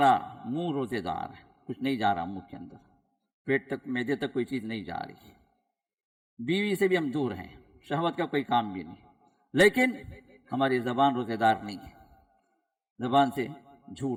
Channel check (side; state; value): both; identical; correlation 1.00